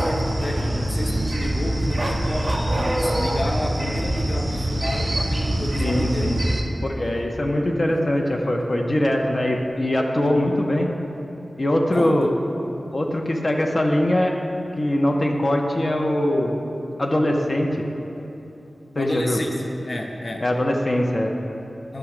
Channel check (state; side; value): normal; both; correlation 0.96